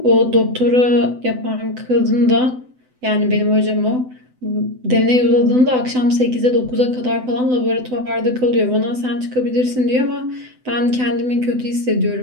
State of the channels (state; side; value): late; left; 7.9 ms